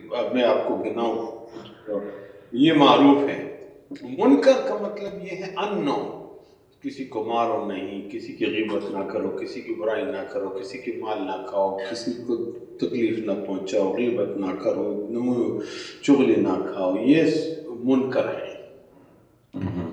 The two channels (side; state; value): both; identical; correlation 1.00